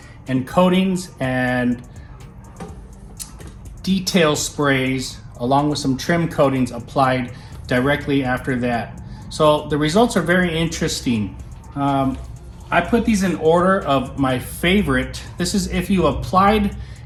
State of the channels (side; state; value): both; identical; correlation 1.00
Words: and coatings and detail sprays along with some trim coatings applied directly after that. So the results are very interesting. I put these in order of my favorite. This is if